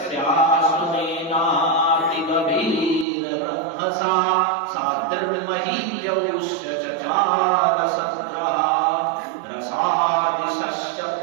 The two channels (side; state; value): left; drops out; at 3.1 s